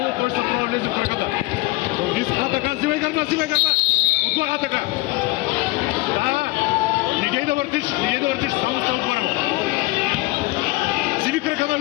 той ще трябва да влезе в краката. Така, взимай гърба! Отгоре, така! Да! Не дей да въртиш, само стой отгоре му. Взими крака на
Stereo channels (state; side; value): quieter; right; 21.1 dB